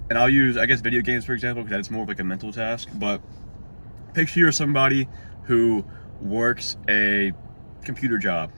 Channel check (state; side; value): inverted; both; correlation -1.00